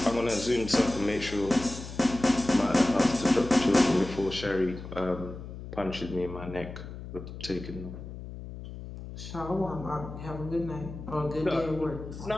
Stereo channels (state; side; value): noise; left; hum, 11 dB below the sound